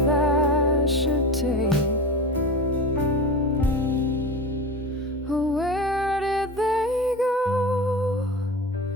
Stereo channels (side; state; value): both; normal; correlation 0.28